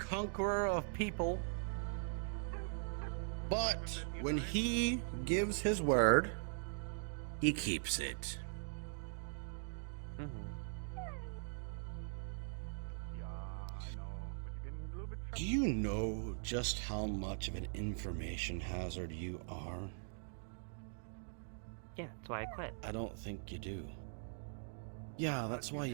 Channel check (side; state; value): left; silent; digital silence